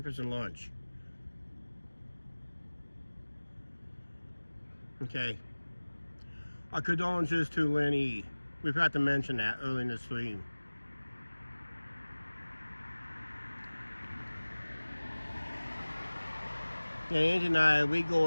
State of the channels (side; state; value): both; inverted; correlation -1.00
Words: and lunch. Okay. Our condolences to Lenny. We forgot to mention that early in the stream. Yeah, Angie and I, we